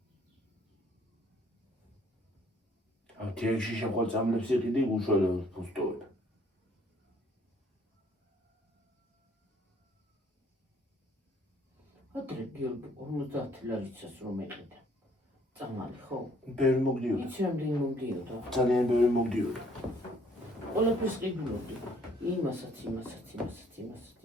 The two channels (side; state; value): both; normal; correlation 0.62